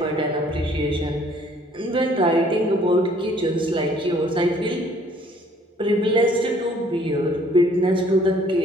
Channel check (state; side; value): normal; both; correlation 0.59